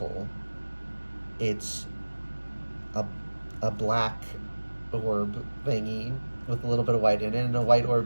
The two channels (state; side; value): inverted; both; correlation -1.00